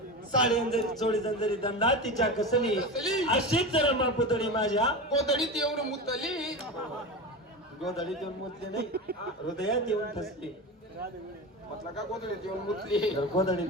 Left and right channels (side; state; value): both; normal; correlation 0.25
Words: साडी अंजरी चोळी अंजरी दंडा तिच्या कसली. कसली? अशीच रमा पुतळी माझ्या गोधडीत येऊन मुतली. गोधडीत येऊन मुतली नाही, हृदयात येऊन फसली. म्हटलं का गोधडीत येऊन मुतली? तर